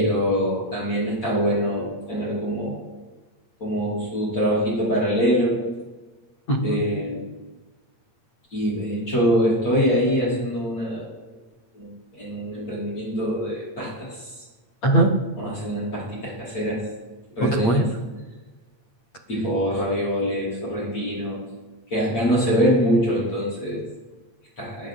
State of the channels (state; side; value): late; right; 8.7 ms